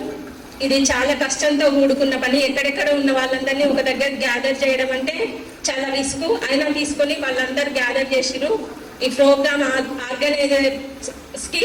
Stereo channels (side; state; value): both; identical; correlation 1.00